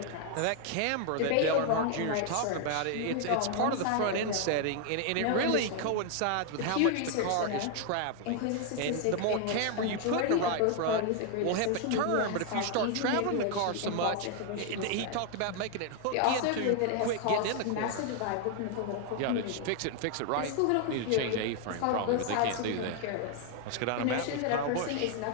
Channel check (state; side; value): different; both; correlation 0.00